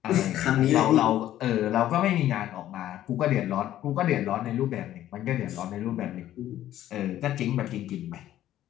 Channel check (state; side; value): quieter; right; 12.8 dB